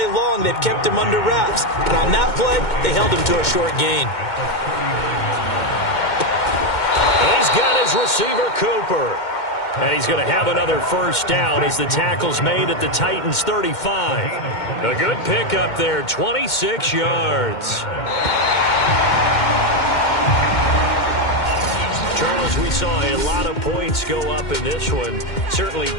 long they've kept him under wraps. And on that play, they held him to a short gain. And he's got his receiver, Cooper. And he's going to have another 1st down as the tackle's made at the Titans' 35. A good pickup there, 26 yards. Charles, we saw a lot of points go up in this one. Certainly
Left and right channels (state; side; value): late; right; 2.1 ms